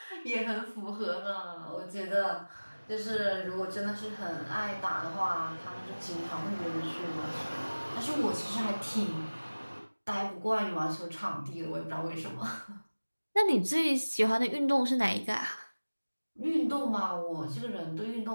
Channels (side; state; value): both; inverted; correlation -1.00